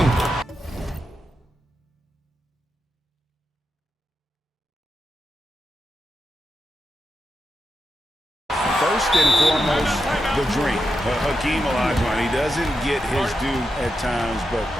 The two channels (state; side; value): normal; both; correlation 0.87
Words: First and foremost, the dream. Hakeem Olajuwon, he doesn't get his due at times, but